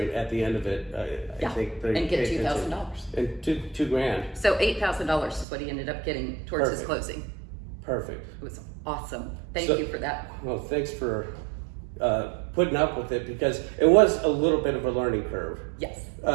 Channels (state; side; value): drops out; left; at 5.5 s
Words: the end of it, I Yeah, think they and get pay attention. $2,000. And two grand. So $8,000 is what he ended up getting towards his Perfect. closing. Perfect. It was awesome. Thank So- you for that. Well, thanks for putting up with it, because it was a little bit of a learning curve. Yes.